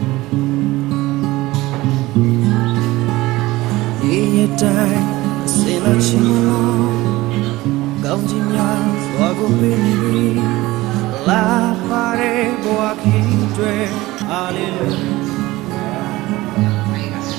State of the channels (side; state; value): left; quieter; 18.8 dB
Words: La pare boa kitwe hallelujah